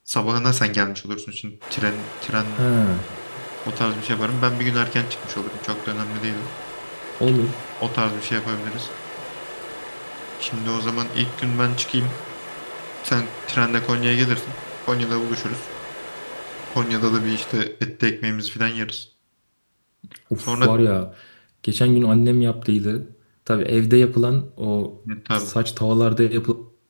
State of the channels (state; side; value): inverted; both; correlation -1.00